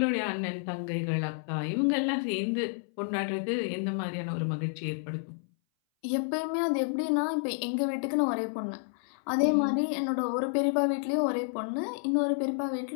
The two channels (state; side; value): silent; right; 58 dB below the other